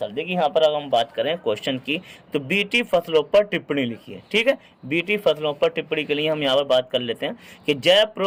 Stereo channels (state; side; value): identical; both; correlation 1.00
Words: देखिए यहाँ पर अगर हम बात करें क्वेश्चन की तो बीटी फसलों पर टिप्पणी लिखिए। ठीक है, बीटी फसलों पर टिप्पणी के लिए हम यहाँ पर बात कर लेते हैं कि जैव